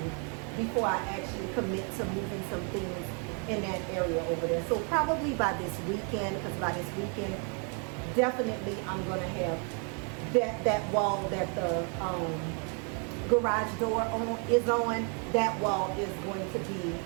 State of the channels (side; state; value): left; quieter; 38.9 dB